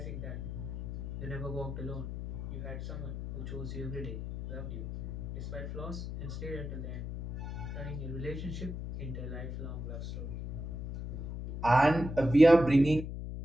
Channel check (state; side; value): noise; left; hum, 6 dB below the sound